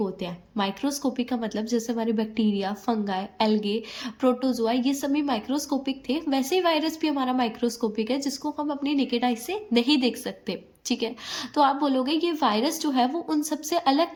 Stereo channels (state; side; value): identical; both; correlation 1.00